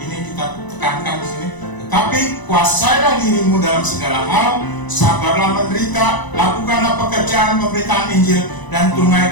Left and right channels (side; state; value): right; late; 1.0 ms